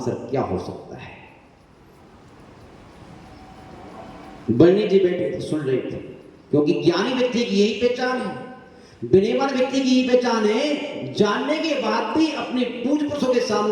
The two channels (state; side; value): identical; both; correlation 1.00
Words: क्या हो सकता है। बरणी जी बैठे थे, सुन रहे थे, क्योंकि ज्ञानी व्यक्ति की यही पहचान है, विनयवान व्यक्ति की यही पहचान है, जानने के बाद भी अपने पूज्य पुरुषों के